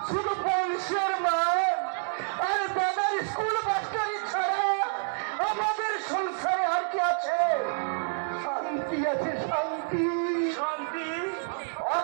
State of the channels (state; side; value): silent; left; 59 dB below the other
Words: শুধু বংশের মান আর দাদার স্কুল মাস্টারি ছাড়া আমাদের সংসারে আর কি আছে? শান্তি আছে, শান্তি। শান্তি?